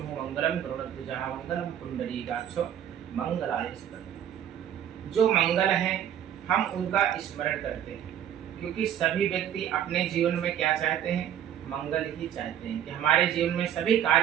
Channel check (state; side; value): quieter; left; 10.1 dB